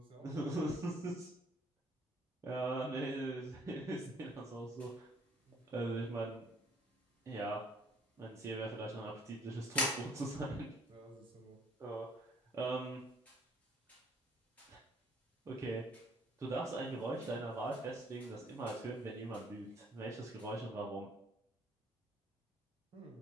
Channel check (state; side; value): normal; both; correlation 0.60